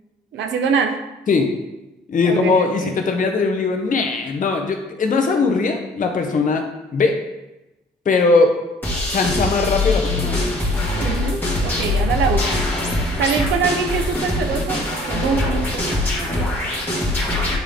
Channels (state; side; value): normal; both; correlation 0.53